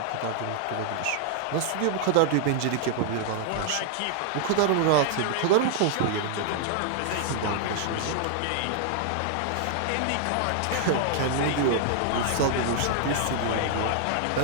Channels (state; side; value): different; both; correlation -0.01